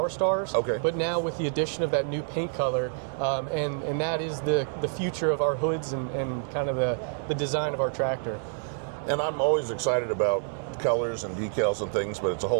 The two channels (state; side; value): silent; left; digital silence